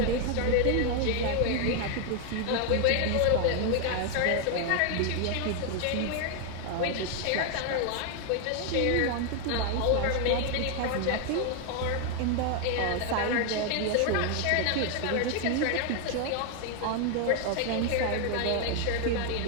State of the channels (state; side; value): different; both; correlation 0.01